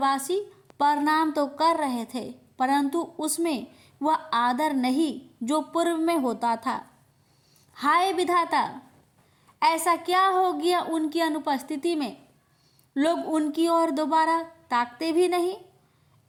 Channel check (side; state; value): both; identical; correlation 1.00